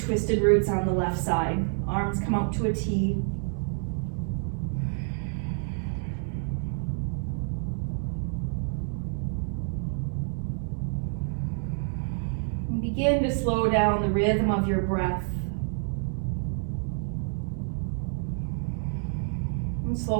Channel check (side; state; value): left; silent; 59 dB below the other